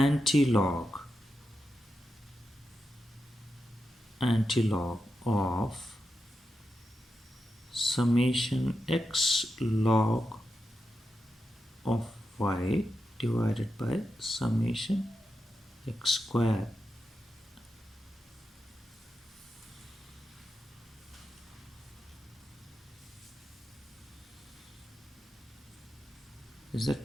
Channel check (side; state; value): both; normal; correlation 0.88